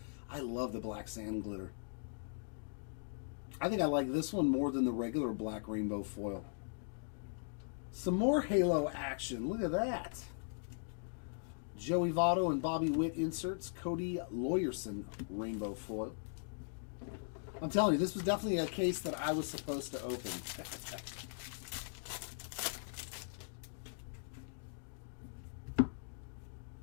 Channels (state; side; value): silent; right; digital silence